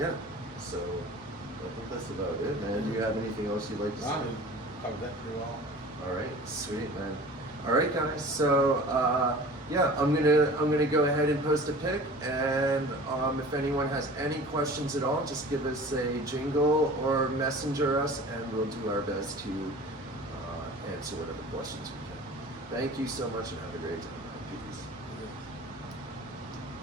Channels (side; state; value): both; normal; correlation 0.41